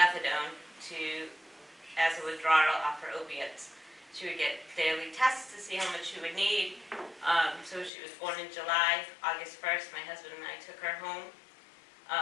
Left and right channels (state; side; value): drops out; right; at 7.9 s